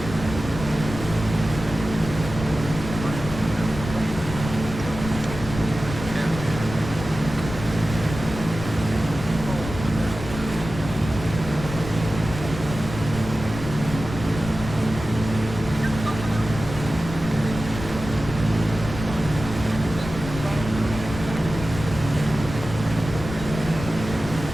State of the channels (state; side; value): noise; left; rumble, 9 dB below the sound